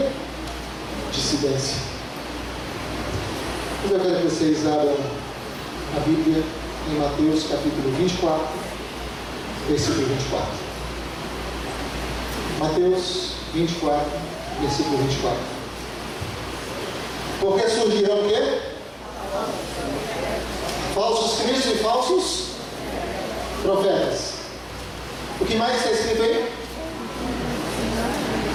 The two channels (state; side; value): identical; both; correlation 1.00